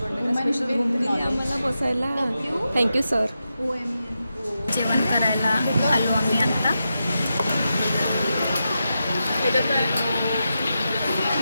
आहे का, स्पेशल रूम दिली आम्हाला बसायला. Thank you sir. जेवण करायला आलो आम्ही आता.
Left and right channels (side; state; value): both; inverted; correlation -0.88